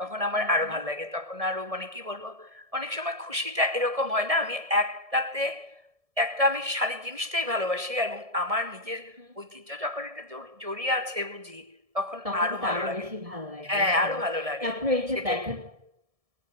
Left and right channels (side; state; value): left; late; 1.7 ms